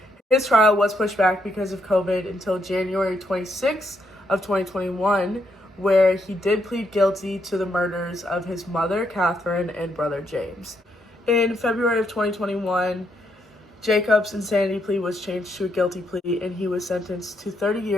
his trial was pushed back because of COVID until January 26th of 2021, where he did plead guilty to the murders of his mother, Kathryn, and brother, James. In February of 2021, Jacob's insanity plea was changed to a guilty plea, and he was sentenced to 30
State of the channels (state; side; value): normal; both; correlation 0.77